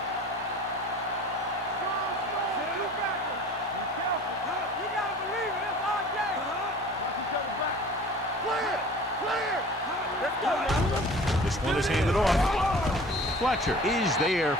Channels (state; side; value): normal; both; correlation 0.44